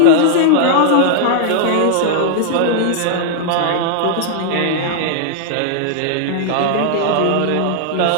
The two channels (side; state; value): both; different; correlation -0.01